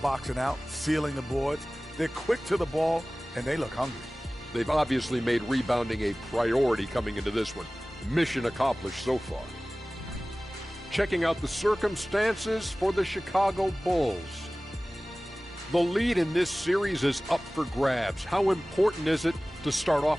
out, sealing the boards. They're quick to the ball, and they look hungry. They've obviously made rebounding a priority coming into this one. Mission accomplished so far. Checking out the circumstances for the Chicago Bulls. The lead in this series is up for grabs. How important is it to start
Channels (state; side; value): normal; both; correlation 0.98